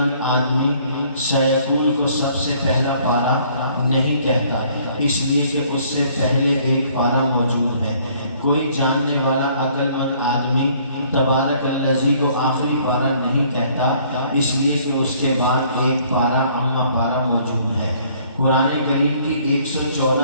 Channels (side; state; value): both; inverted; correlation -0.60